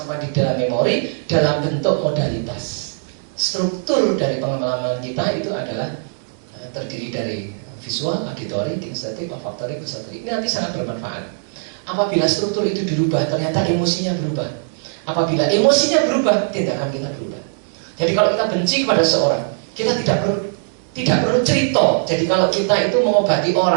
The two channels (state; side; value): silent; left; digital silence